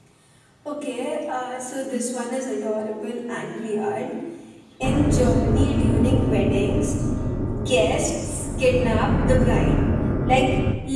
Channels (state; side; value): identical; both; correlation 1.00